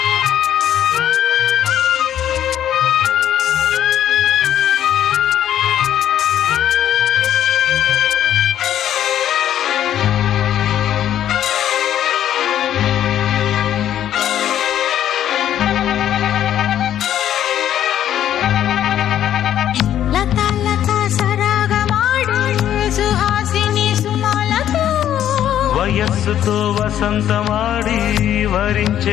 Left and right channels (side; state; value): right; quieter; 10.9 dB